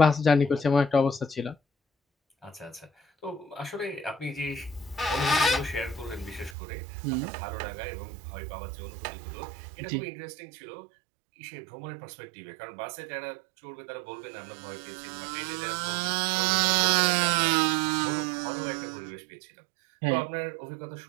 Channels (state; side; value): drops out; left; at 6.6 s